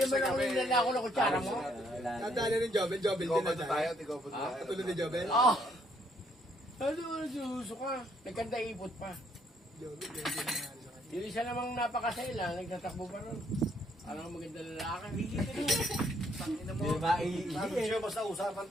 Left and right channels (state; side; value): normal; both; correlation 0.69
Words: mo lang nilala ako ng kutsara mo? Nadali ng Jobel din Tigopad na na tayo. tayo, tigopad na tayo. Katulad ni Jobel. Oo. Ano, suso ka? Nagkanda ipot pa. Yung isa namang napakasela, nagtatakbo pa ron. Alam maganda lalaki. Di ba? Sabi siya, basta usapan